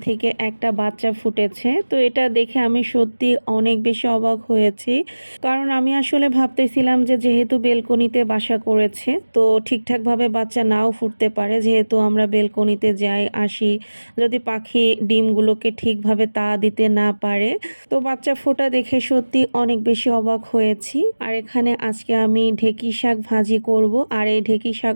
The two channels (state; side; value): inverted; both; correlation -1.00